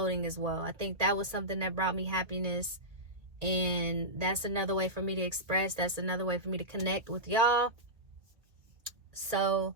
as well. I think that was something that brought me happiness, and that's another way for me to express. That's another way for me to connect with y'all. So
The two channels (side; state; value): left; late; 1.7 ms